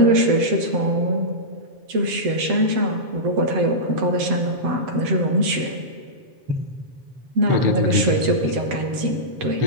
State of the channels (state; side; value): late; left; 7.8 ms